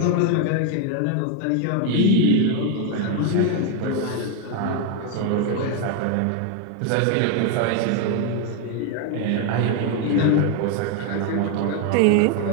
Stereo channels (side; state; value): both; different; correlation 0.01